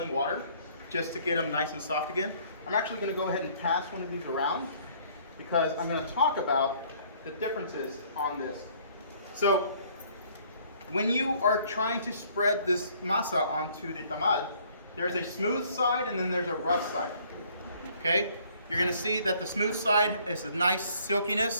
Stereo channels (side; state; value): both; inverted; correlation -0.60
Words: water just to get them nice and soft again. I'm actually going to go ahead and pass one of these around because I'm going to talk about the differences on this. So when you are trying to spread this masa onto the tamal, there's a smooth side and then there's a rough side. Okay, you're going to see that the smooth side is a nice